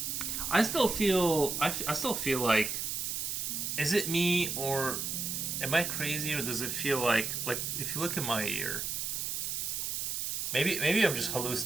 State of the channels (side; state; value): right; noise; hiss, 2 dB below the sound